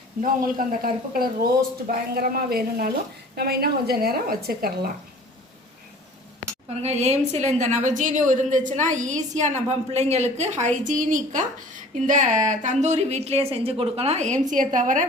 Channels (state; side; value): normal; both; correlation 0.47